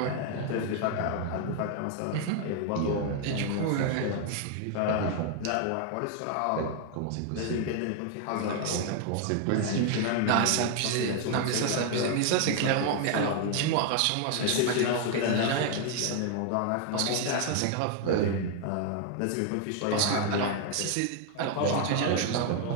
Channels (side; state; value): both; different; correlation 0.00